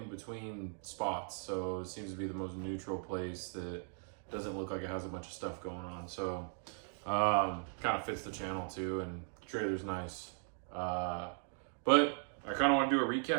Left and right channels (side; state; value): left; silent; 52 dB below the other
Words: between spots. So, it seems to be the most neutral place that doesn't look like it has a bunch of stuff going on. So, kind of fits the channel too. And the trailer's nice. But I kind of want to do a